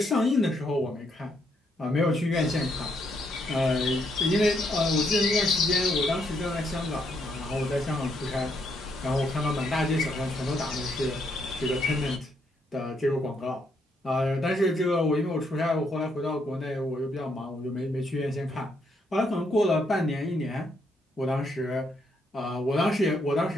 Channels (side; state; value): both; normal; correlation 0.75